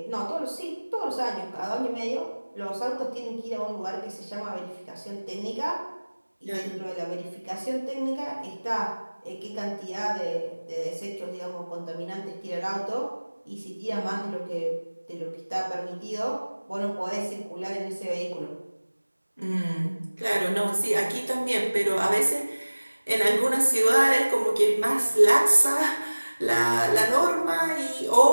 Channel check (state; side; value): inverted; both; correlation -1.00